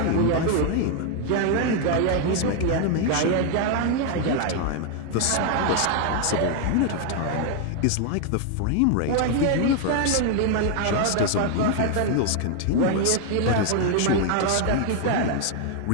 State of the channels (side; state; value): both; different; correlation 0.01